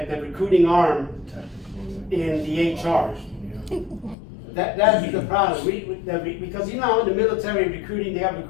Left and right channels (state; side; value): drops out; right; at 4.2 s